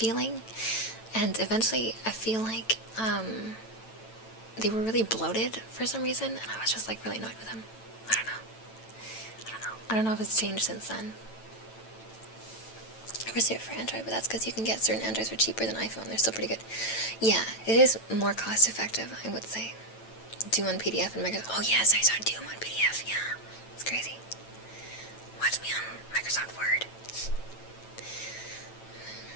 and eventually I feel like they were really bloated for some reason, and I was just like really annoyed with them. I don't know if it's changed since then. Reserved for Android, but that's because you can get certain Androids for cheaper than iPhone. They're still pretty good. Yeah, it is more cost effective, I would say. Doom on PDF and Microsoft. Oh yes, I saw Doom on PDF. Yeah, it's crazy. Watch me on Microsoft Word.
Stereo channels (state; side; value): late; right; 9.0 ms